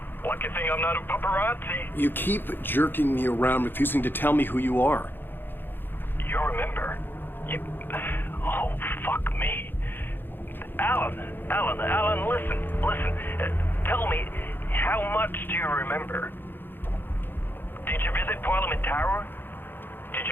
Lucky thing I'm not a paparazzi. You keep jerking me around, refusing to tell me who you are. You remember? You... Oh, fuck me. Alan, listen. Tell me, how much do you remember? Did you visit Parliament Tower? Did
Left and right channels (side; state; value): right; late; 0.099 ms